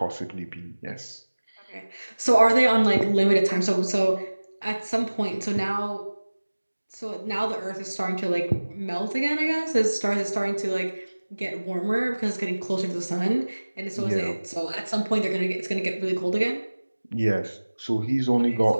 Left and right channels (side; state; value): both; inverted; correlation -1.00